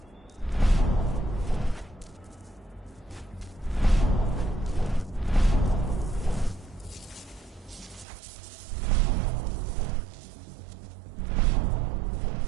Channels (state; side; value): drops out; left; at 8.1 s